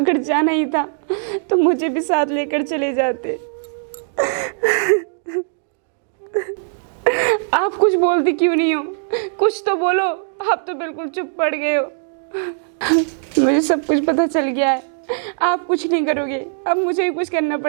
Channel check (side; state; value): left; silent; digital silence